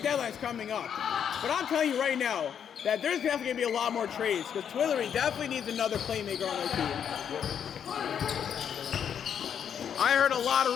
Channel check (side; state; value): right; quieter; 8.3 dB